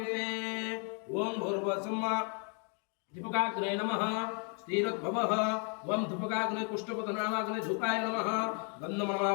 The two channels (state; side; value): quieter; right; 39.0 dB